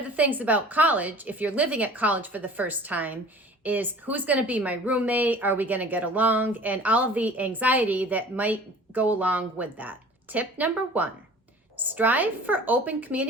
the things about college, if you're living at college for the first time, is who's going to be my roommate? Are we going to get along? And all of the anxiety that might go along with that. Tip number 1, strive for open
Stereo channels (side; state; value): both; normal; correlation 0.46